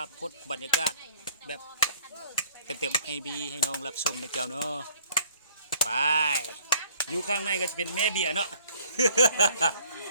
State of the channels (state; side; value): inverted; both; correlation -0.58